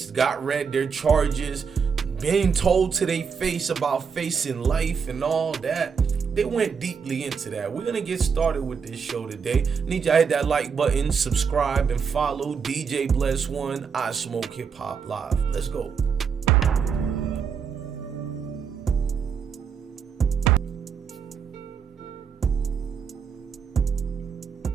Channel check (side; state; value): left; quieter; 6.3 dB